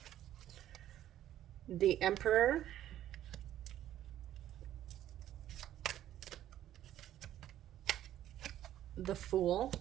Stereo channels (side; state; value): left; quieter; 12.2 dB